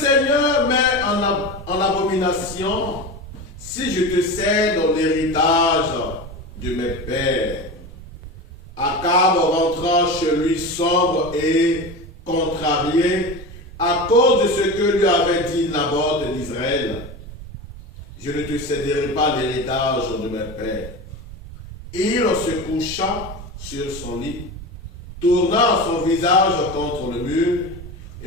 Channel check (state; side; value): normal; both; correlation 0.26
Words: met en abomination si je te cède l'héritage de mes pères. Akab rentra chez lui sombre et contrarié à cause de ce que lui avait dit Naboth d'Israël. Je ne te céderai pas l'héritage de mes pères. Il se coucha sur son lit, tourna son visage contre le mur